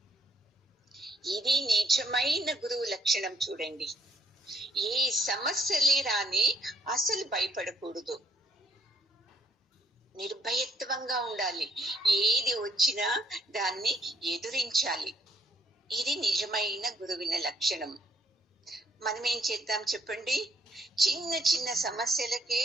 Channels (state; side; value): normal; both; correlation 0.68